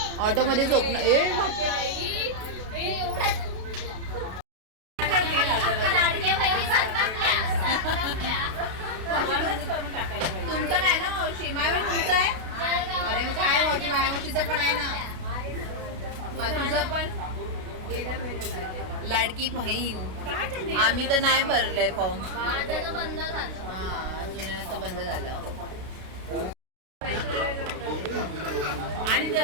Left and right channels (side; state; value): left; late; 32 ms